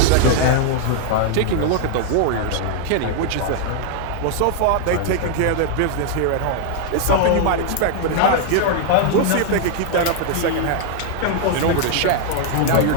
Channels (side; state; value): both; different; correlation 0.00